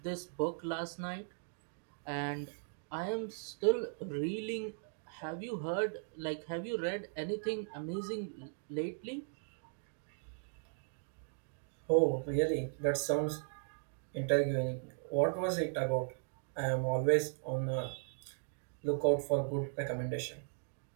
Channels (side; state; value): left; silent; digital silence